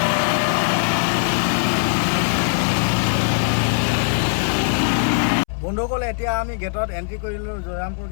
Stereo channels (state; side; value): silent; right; 65 dB below the other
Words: বন্ধুসকল, এতিয়া আমি গেটত এণ্ট্ৰি কৰিলোঁ, জয়ৰামপুৰ